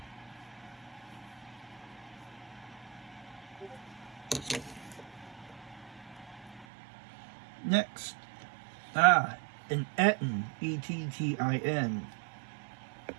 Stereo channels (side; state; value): left; drops out; at 6.7 s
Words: Next. An Ettin. E-T-T-I-N.